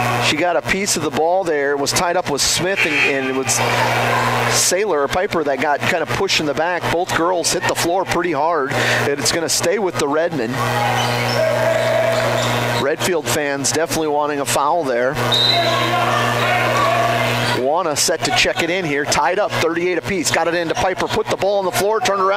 she got a piece of the ball there. Was tied up with Smith, and it was Sailor or Piper that got kind of pushed in the back. Both girls hit the floor pretty hard, and it's going to stay with the Redmond. Redfield fans definitely wanting a foul there. Wanna set to check it in here. Tied up, 38 apiece. Got it into Piper. Put the ball on the floor. Turned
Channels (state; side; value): identical; both; correlation 1.00